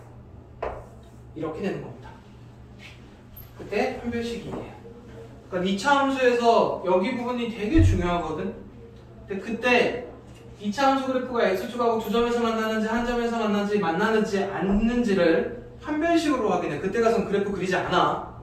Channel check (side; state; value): both; identical; correlation 1.00